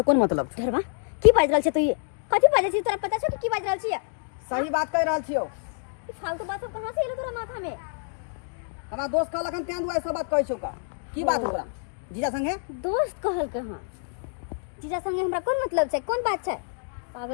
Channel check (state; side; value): silent; right; digital silence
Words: कोन मतलब धरबा की बाज रहल छै तू ये कथी बाजे छी तोरा पता छौ कि की बाज रहल छी सही बात कह रहल छियो ई फालतू बात सब कहां से एलो तोरा माथा में हमरा दोस्त कहलक हन तें दुआरे सब बात कहै छौ का की बात हो तोरा जीजा संगे दोस्त कहल के हां जीजा संगे हमरा कोन मतलब छै कोन बात छै